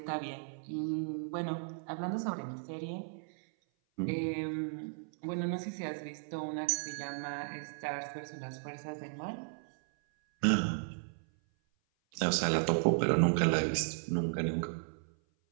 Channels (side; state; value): left; silent; 54 dB below the other